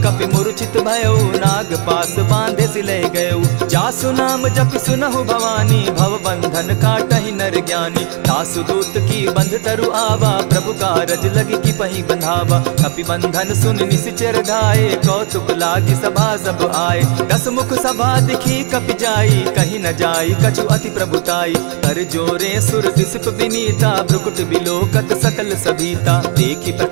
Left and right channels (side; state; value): left; quieter; 37.8 dB